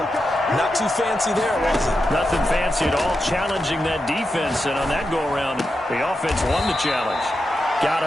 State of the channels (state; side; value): normal; both; correlation 0.88